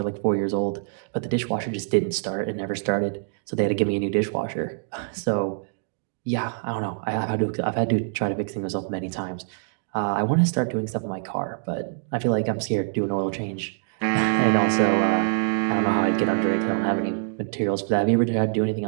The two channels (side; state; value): left; silent; digital silence